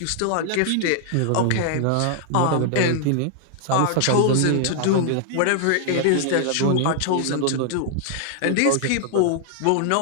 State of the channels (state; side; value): different; both; correlation -0.01